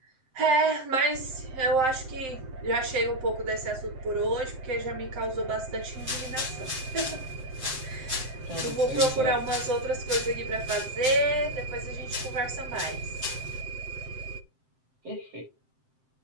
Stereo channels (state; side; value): late; left; 7.7 ms